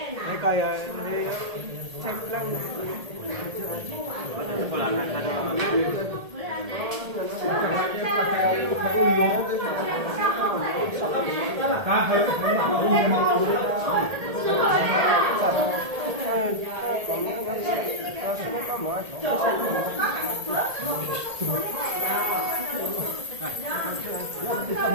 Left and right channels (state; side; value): late; left; 1.8 ms